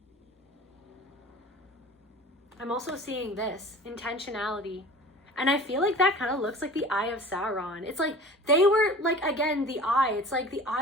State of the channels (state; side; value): normal; both; correlation 0.41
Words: I'm also seeing this, intentionality. And I feel like that kind of looks like the eye of Sauron. It's like they were like, again, the eye. It's like the